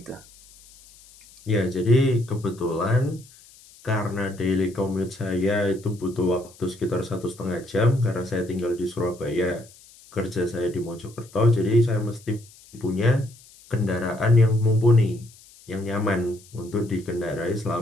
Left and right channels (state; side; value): noise; left; hiss, 24 dB below the sound